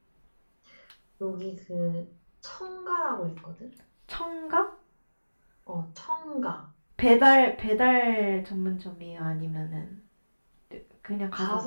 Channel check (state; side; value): inverted; both; correlation -1.00